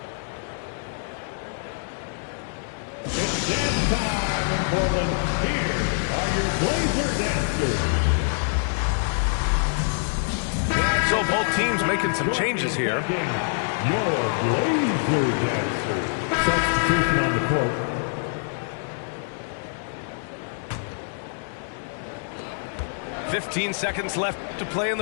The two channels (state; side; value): silent; right; digital silence